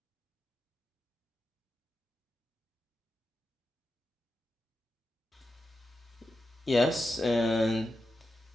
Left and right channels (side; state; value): both; normal; correlation 0.90